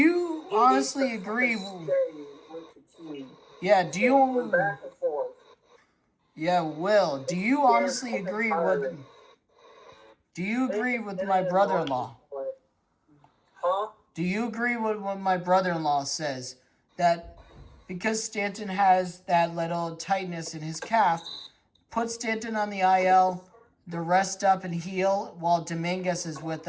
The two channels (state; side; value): identical; both; correlation 1.00